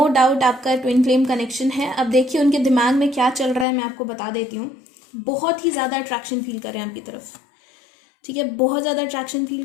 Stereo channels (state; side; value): drops out; right; at 3.7 s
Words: डाउट आपका ट्विन फ्लेम कनेक्शन है। अब देखिए उनके दिमाग में क्या चल रहा है, मैं आपको बता देती हूँ। बहुत ही ज़्यादा अट्रैक्शन फील कर रहे हैं आपकी तरफ, ठीक है। बहुत ज़्यादा अट्रैक्शन फील